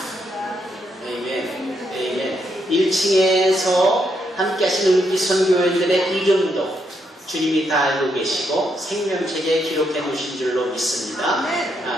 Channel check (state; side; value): normal; both; correlation 0.78